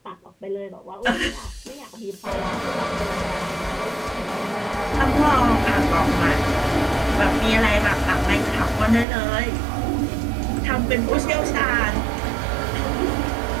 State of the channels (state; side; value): drops out; left; at 9.1 s